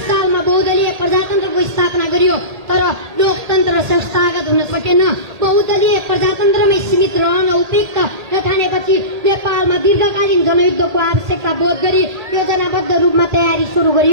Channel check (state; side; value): late; left; 1.8 ms